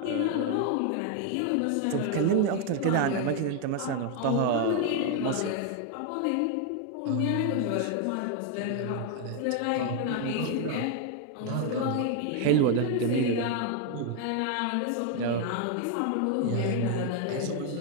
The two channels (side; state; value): both; different; correlation 0.00